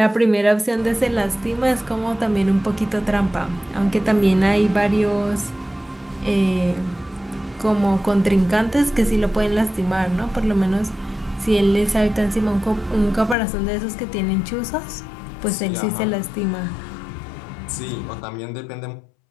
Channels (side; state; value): right; drops out; at 13.4 s